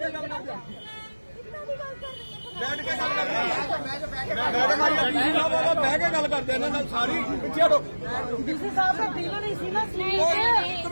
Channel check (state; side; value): inverted; both; correlation -1.00